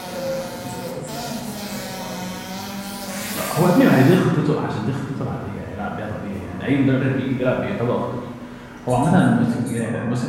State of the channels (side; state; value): both; identical; correlation 1.00